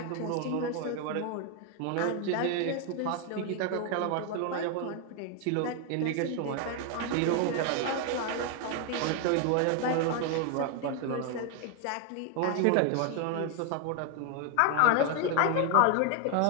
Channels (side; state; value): both; different; correlation 0.01